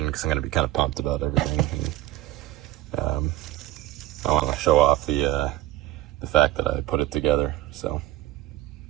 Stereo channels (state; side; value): quieter; left; 16.0 dB